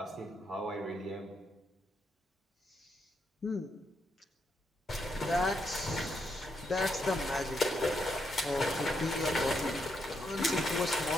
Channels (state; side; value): normal; both; correlation 0.79